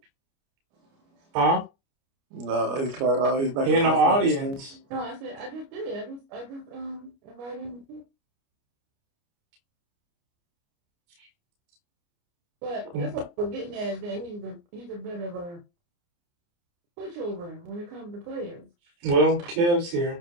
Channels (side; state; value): left; late; 29 ms